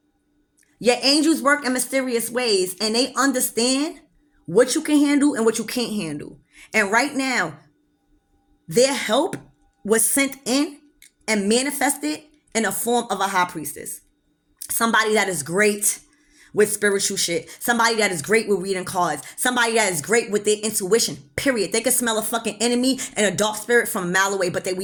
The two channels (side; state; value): both; identical; correlation 1.00